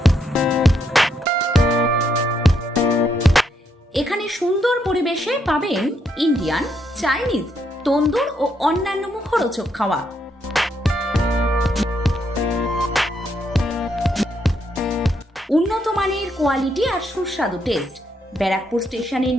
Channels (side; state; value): both; normal; correlation 0.76